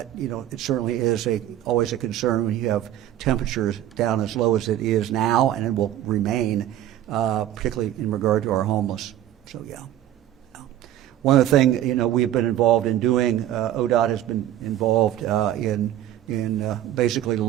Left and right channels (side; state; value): left; quieter; 12.3 dB